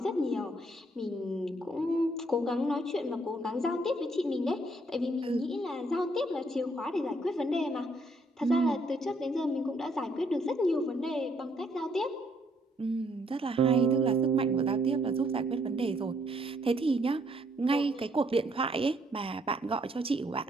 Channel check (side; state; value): both; normal; correlation 0.69